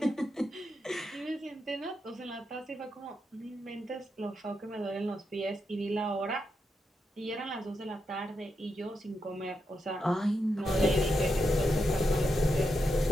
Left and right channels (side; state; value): both; normal; correlation 0.85